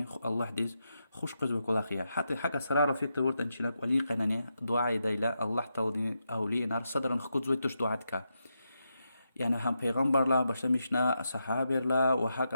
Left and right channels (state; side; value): inverted; both; correlation -0.85